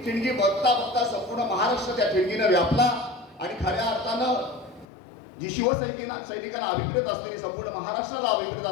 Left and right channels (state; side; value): drops out; right; at 4.9 s